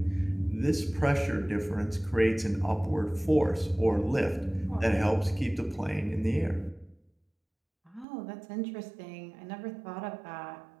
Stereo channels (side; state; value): left; drops out; at 8.1 s